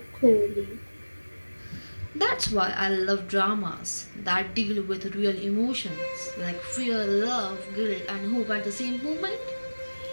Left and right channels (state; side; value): inverted; both; correlation -1.00